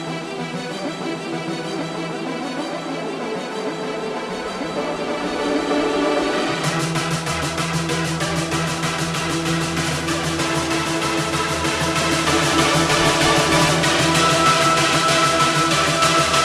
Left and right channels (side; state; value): both; identical; correlation 1.00